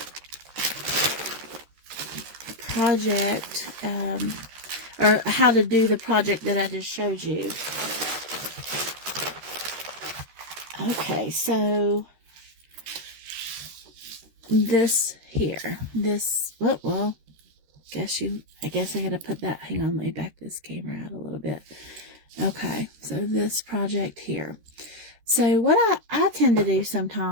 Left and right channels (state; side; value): late; left; 13 ms